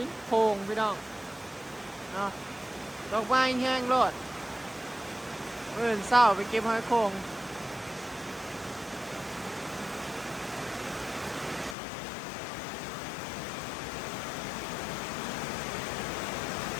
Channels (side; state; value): right; drops out; at 11.8 s